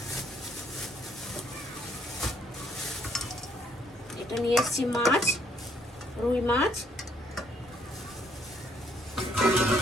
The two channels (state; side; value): normal; both; correlation 0.68